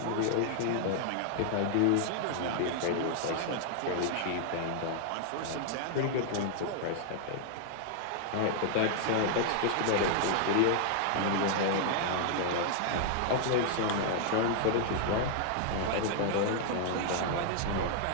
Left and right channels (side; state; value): both; different; correlation 0.00